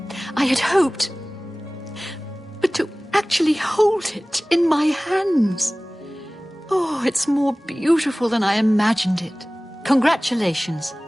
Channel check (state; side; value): normal; both; correlation 0.98